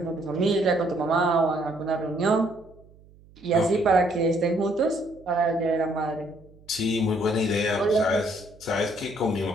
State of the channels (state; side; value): noise; right; hum, 26 dB below the sound